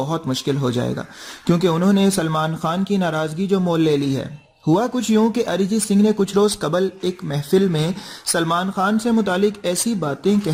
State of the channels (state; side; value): identical; both; correlation 1.00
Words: मुश्किल हो जाएगा, क्योंकि उन्होंने सलमान खान की नाराजगी जो मोल ले ली है। हुआ कुछ यूं कि अरिजीत सिंह ने कुछ रोज कबल एक महफिल में सलमान खान से मुतालिक ऐसी बातें